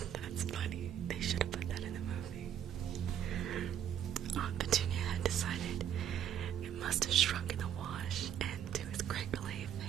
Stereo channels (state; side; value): quieter; left; 9.7 dB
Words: That's funny. They should have put that in the movie. Aunt Petunia had decided it must have shrunk in the wash, and to his great relief,